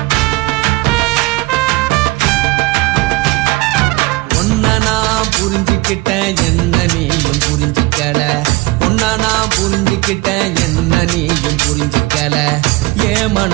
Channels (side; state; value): left; quieter; 22.5 dB